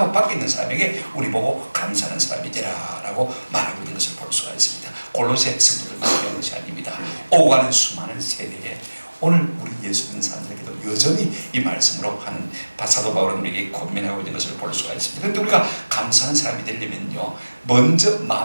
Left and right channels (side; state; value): both; inverted; correlation -1.00